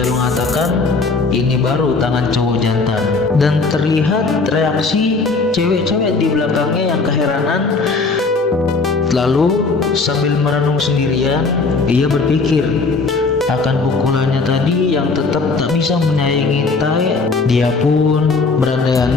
mengatakan ini baru tangan cowok jantan, dan terlihat reaksi cewek-cewek di belakangnya yang keheranan. Lalu sambil merenung sendirian, ia berpikir akan pukulannya tadi yang tetap tak bisa menyayangi Tae. Dia pun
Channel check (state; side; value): quieter; right; 4.1 dB